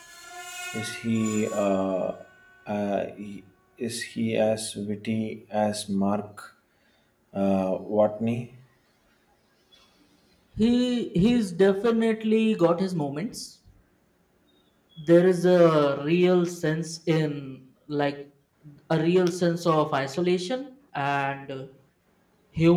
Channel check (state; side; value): identical; both; correlation 1.00